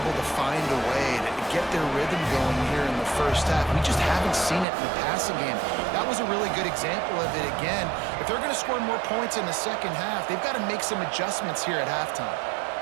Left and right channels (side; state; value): left; drops out; at 4.7 s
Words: to find a way to get their rhythm going here in the first half. We just haven't seen it in the passing game. That was a really good example of it again. If they're going to score more points in the second half, they've got to make some adjustments here at halftime.